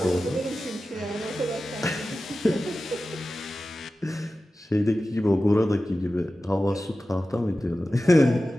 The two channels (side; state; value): both; normal; correlation 0.94